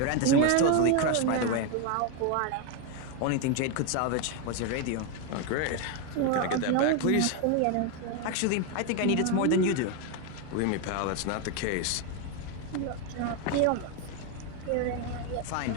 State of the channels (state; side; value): different; both; correlation 0.01